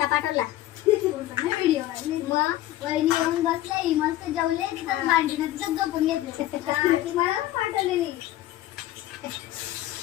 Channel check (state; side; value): quieter; right; 14.5 dB